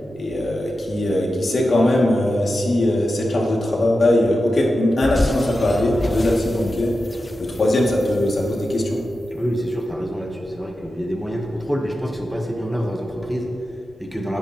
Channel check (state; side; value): normal; both; correlation 0.91